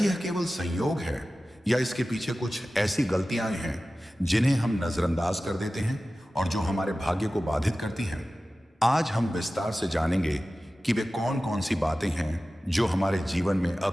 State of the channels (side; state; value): both; normal; correlation 0.96